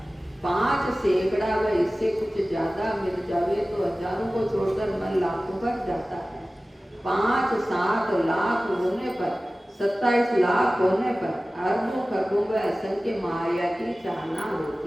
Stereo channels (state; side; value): normal; both; correlation 0.97